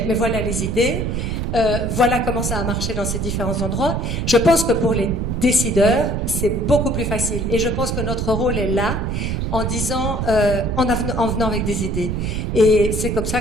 mais voilà les idées. Voilà comment ça a marché dans ces différents endroits. Je pense que pour les décideurs, c'est beaucoup plus facile. Et je pense que notre rôle est là, en disant, en venant avec des idées. Et c'est comme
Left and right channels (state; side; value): noise; right; rumble, 1 dB below the sound